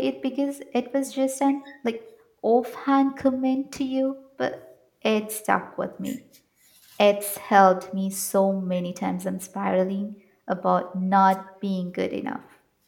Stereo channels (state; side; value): identical; both; correlation 1.00